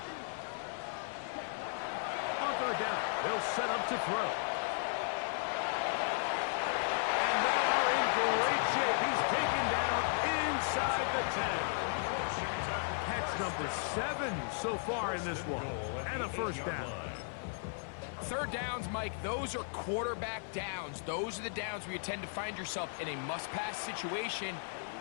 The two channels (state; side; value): silent; right; 54 dB below the other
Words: On 3rd down, they'll set up to throw. Great shape. He's taken down inside the 10. Catch number 7 so far in this one. And a first down. 3rd downs, Mike, those are quarterback downs. Those are the downs where you tend to find yourself in a must-pass situation,